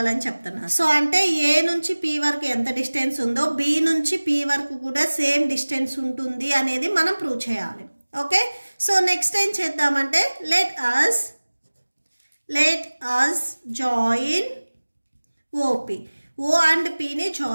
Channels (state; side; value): inverted; both; correlation -1.00